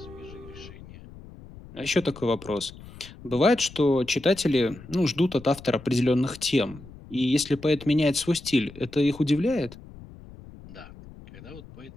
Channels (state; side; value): noise; left; rumble, 18 dB below the sound